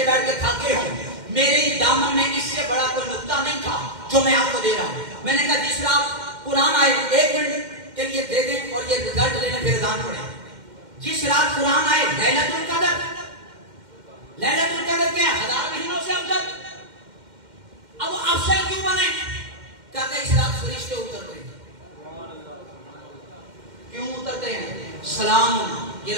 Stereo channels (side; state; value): left; late; 2.1 ms